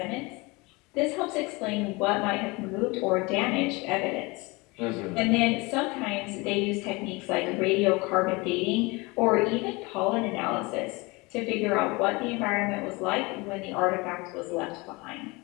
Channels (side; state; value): right; quieter; 25.0 dB